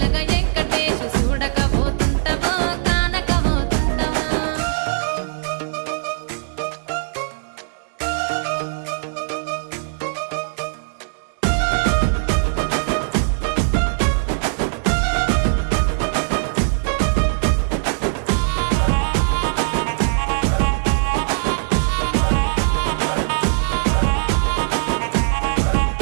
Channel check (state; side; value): silent; left; digital silence